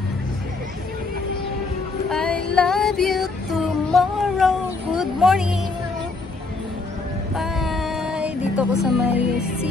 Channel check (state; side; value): quieter; right; 3.7 dB